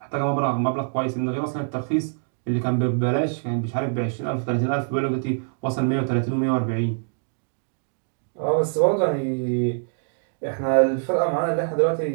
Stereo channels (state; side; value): silent; left; digital silence